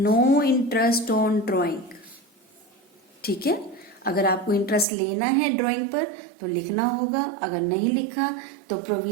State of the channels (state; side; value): drops out; left; at 4.9 s